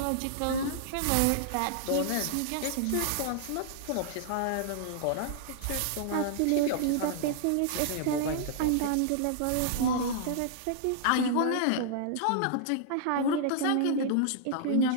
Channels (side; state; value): both; different; correlation -0.01